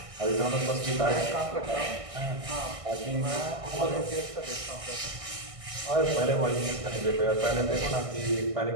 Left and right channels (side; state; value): left; late; 1.6 ms